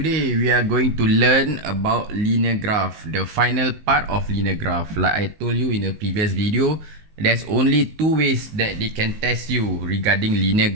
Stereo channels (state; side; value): late; left; 19 ms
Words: we are going to learn about linear graph, the final part of linear graph. Like I told you in a previous video, there's only two ways that they can test you regarding linear